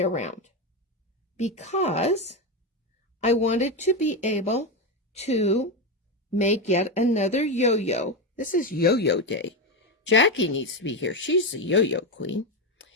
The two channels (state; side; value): normal; both; correlation 0.12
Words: around because I wanted to be able to make yet another yo-yo. This is yo-yo day. Jackie needs to be here. She's the yo-yo queen.